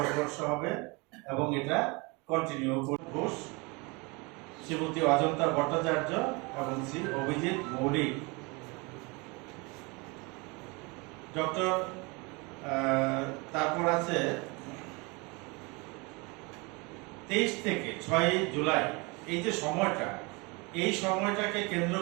হবে এবং এটা কন্টিনিউ ঘোষ, শ্রীমতী অজন্তা ভট্টাচার্য এবং শ্রী অভিজিৎ মৌলিক। ডক্টর তারপর আছে 23 থেকে 6 জুলাই এই যে সময়টা, এই সময়টাকে কেন্দ্র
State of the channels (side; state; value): left; quieter; 27.9 dB